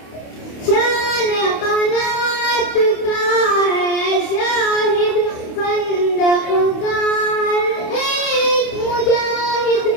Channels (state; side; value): late; right; 28 ms